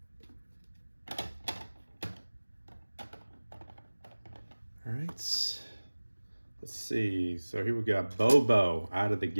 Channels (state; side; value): inverted; both; correlation -1.00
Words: All right, let's see. So here we got Bobo out of the